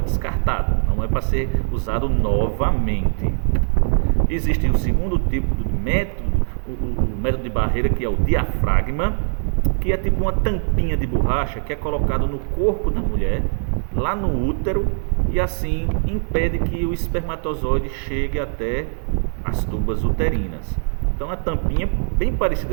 não é para ser usado novamente. Existe o segundo tipo de método, o método de barreira, que é o diafragma, que é tipo uma tampinha de borracha que é colocado no corpo da mulher, lá no útero, e assim impede que o espermatozoide chegue até as tubas uterinas. Então a tampinha bem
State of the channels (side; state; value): left; silent; 65 dB below the other